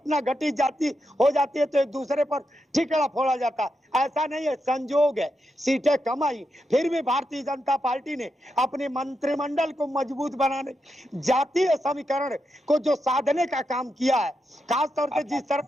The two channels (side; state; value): both; normal; correlation 0.85